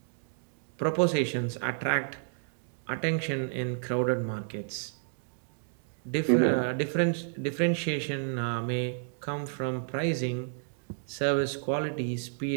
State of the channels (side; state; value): left; silent; digital silence